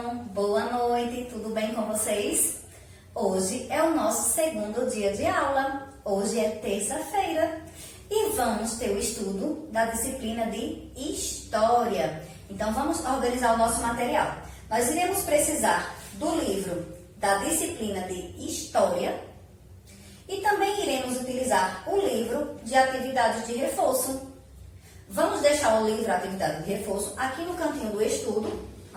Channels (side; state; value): both; identical; correlation 1.00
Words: boa noite, tudo bem com vocês? Hoje é o nosso segundo dia de aula, hoje é terça-feira e vamos ter o estudo da disciplina de História. Então vamos organizar o nosso material. Nós iremos precisar do livro da disciplina de História e também iremos utilizar o livro de atividades de reforço. Vamos deixar o livro Atividade de Reforço aqui no cantinho do estudo,